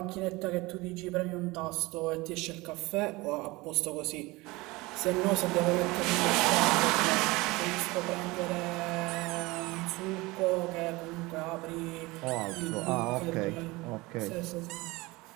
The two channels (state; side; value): quieter; left; 22.1 dB